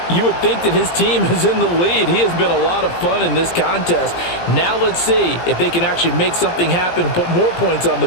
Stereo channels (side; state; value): right; late; 17 ms